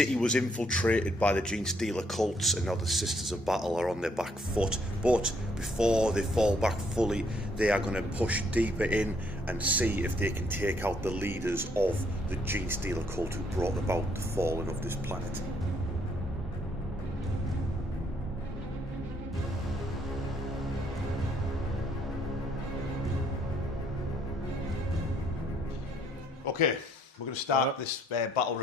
was infiltrated by the Genestealer Cults, and now the Sisters of Battle are on their back foot, but before they fall back fully they are going to push deeper in and see if they can take out the leaders of the Genestealer Cult who brought about the falling of this planet. Okay, we're going to start this battle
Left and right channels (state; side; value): normal; both; correlation 0.69